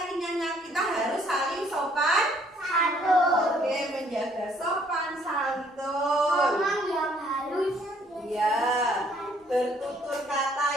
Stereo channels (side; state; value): both; normal; correlation 0.64